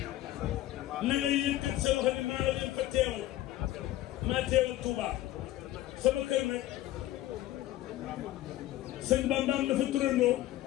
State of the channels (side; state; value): right; quieter; 14.9 dB